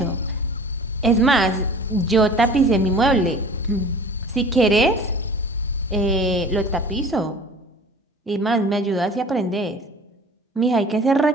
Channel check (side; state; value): both; normal; correlation 0.44